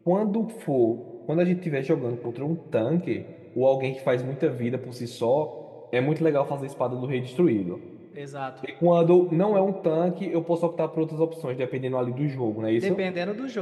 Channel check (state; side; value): identical; both; correlation 1.00